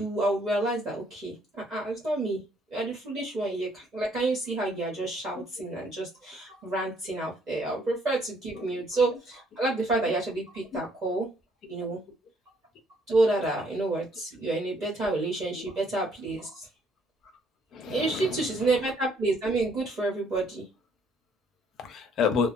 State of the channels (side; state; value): both; normal; correlation 0.65